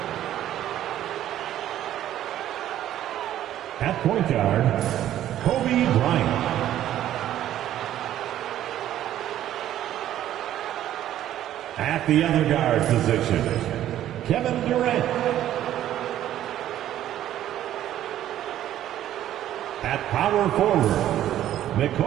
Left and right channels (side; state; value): left; quieter; 12.2 dB